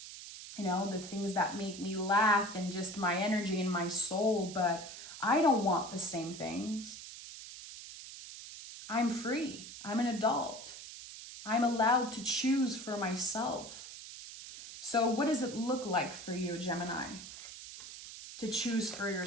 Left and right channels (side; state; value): right; noise; hiss, 12 dB below the sound